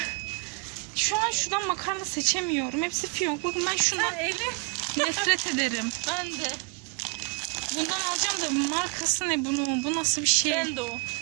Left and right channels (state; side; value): quieter; left; 29.6 dB